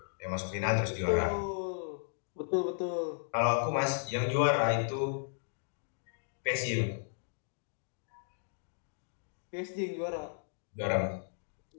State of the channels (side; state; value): right; silent; digital silence